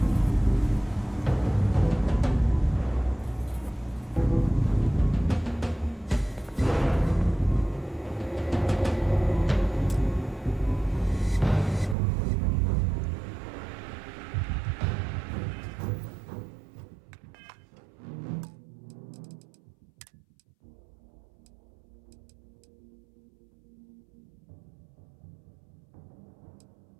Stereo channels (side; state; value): left; drops out; at 12.0 s